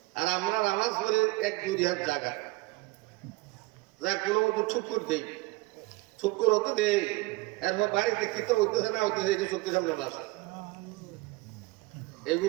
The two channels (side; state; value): left; quieter; 22.1 dB